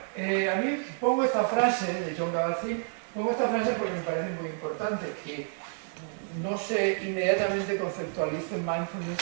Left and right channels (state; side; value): silent; left; 58 dB below the other